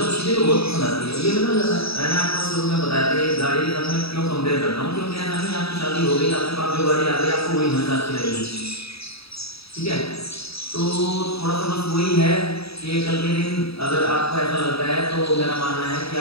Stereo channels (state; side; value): late; right; 0.77 ms